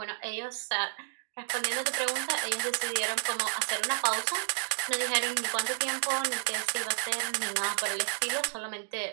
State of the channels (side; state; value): left; silent; 57 dB below the other